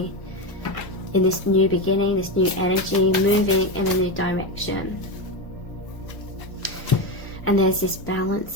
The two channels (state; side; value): late; right; 1.0 ms